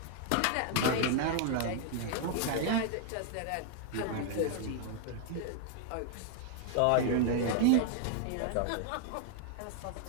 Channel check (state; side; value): different; both; correlation 0.00